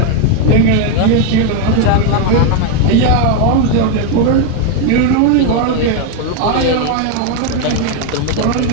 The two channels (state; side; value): different; both; correlation 0.01